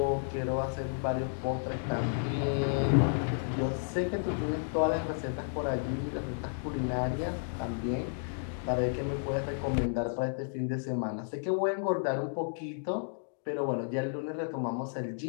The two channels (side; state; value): right; silent; digital silence